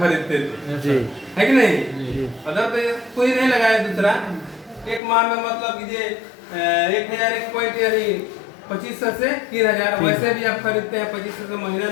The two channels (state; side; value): drops out; right; at 5.0 s